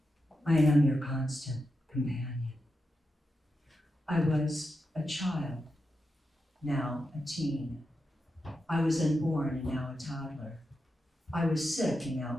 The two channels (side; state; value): both; normal; correlation 0.88